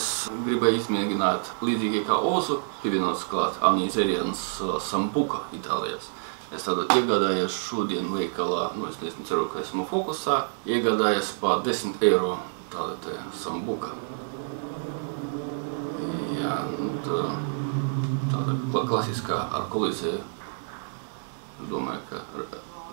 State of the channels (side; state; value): left; silent; digital silence